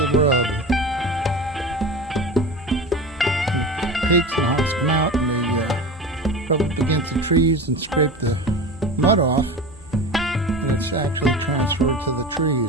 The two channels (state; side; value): normal; both; correlation 0.31